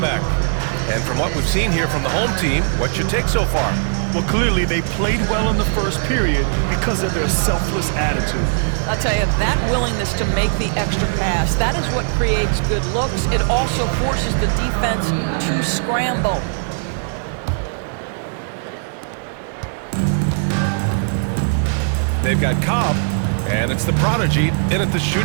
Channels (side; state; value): left; silent; 61 dB below the other